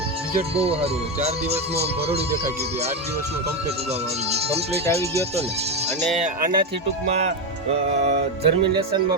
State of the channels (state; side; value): normal; both; correlation 0.11